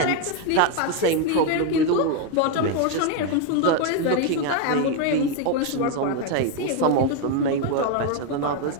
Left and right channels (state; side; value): different; both; correlation 0.01